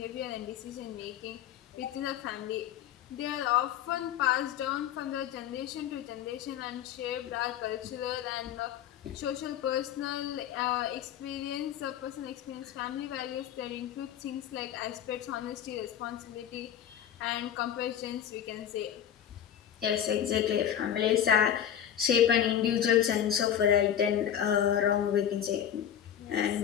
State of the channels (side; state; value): right; quieter; 9.8 dB